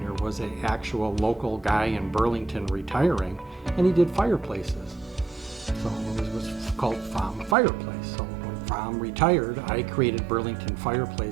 there was an actual local guy in Burlington retiring, and he did fireplaces. So it was called Fireplace. So when Fromm retired, I created Burlington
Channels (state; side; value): drops out; left; at 7.6 s